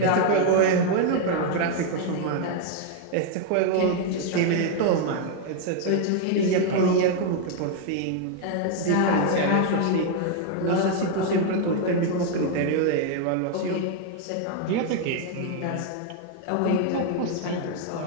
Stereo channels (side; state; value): both; different; correlation 0.01